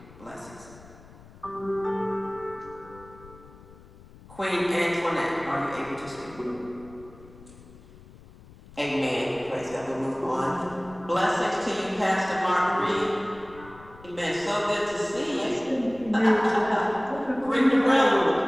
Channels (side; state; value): left; noise; rumble, 21 dB below the sound